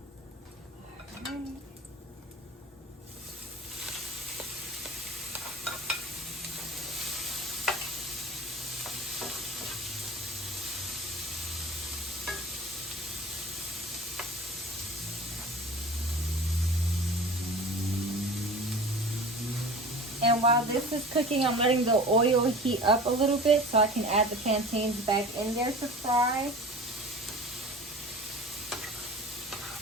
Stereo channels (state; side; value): normal; both; correlation 0.38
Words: Alright. And while this is cooking, I'm letting the oil heat up a little bit so I can add the plantains back in there to fry.